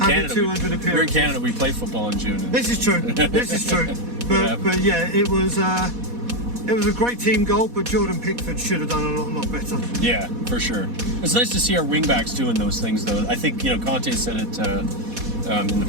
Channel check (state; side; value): late; left; 4.1 ms